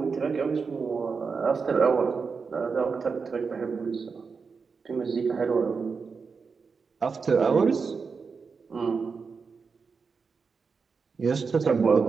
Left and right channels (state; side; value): quieter; left; 5.2 dB